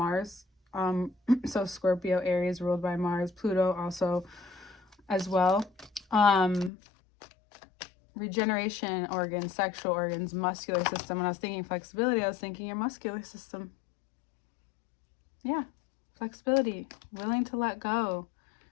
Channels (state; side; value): drops out; right; at 6.7 s